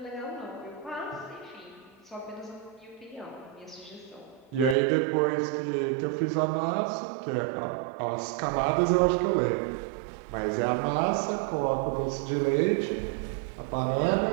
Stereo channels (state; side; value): drops out; left; at 4.8 s